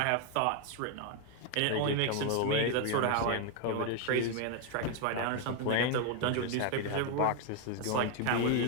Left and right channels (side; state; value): both; different; correlation 0.01